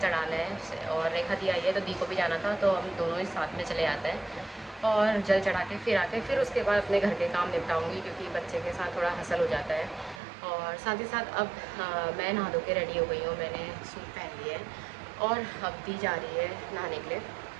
है। और रेखा दी आई है तो दी को भी जाना था, तो हम दोनों ही साथ में चले आते हैं और जल चढ़ा के फिर आके फिर उसके बाद अपने घर के काम निपटाऊँगी, क्योंकि बच्चे के साथ थोड़ा हसल हो जाता है। और साथ ही साथ अब मैं नहा धो के रेडी हो गई हूँ, मैंने सूट पहन लिया है और अब दी जा रही है नहाने के लिए।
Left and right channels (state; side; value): drops out; left; at 10.2 s